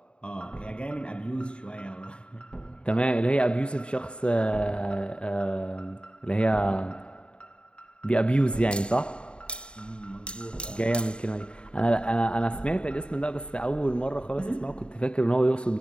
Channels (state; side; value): late; right; 0.053 ms